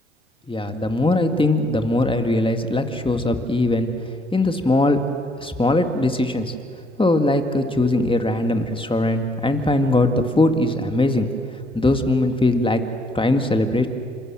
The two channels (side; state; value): both; normal; correlation 0.68